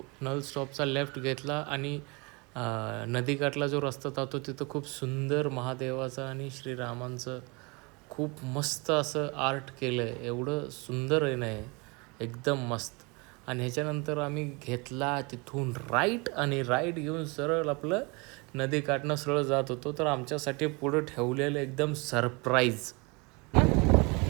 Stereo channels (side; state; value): left; quieter; 28.4 dB